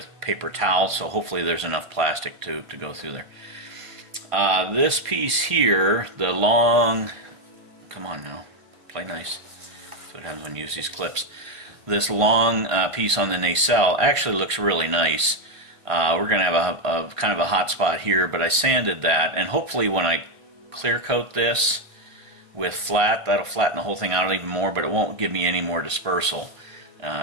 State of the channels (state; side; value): late; left; 1.5 ms